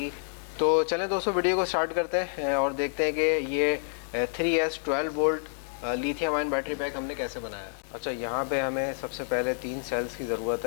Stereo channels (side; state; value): right; silent; digital silence